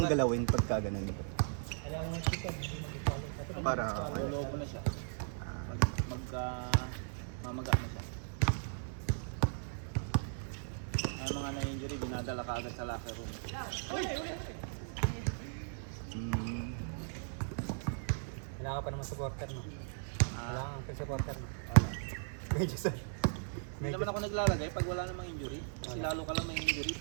galawin pagka ganun? Alam mo yung chicken, hindi mo swallow. Para Lolobo na siya. Mamaga na siya. Ang mga na-injury, dinadala ka agad sa locker room. Kailangan ka pa naman supporter, no? Kailangan ka supporter, no? Ano? Medyo sir. Hindi naman ako naglalagay pag wala namang injury. Kasi lalo ka lang may injury.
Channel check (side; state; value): left; silent; digital silence